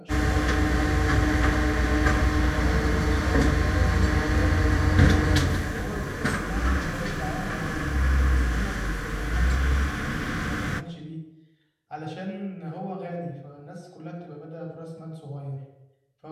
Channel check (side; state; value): both; identical; correlation 1.00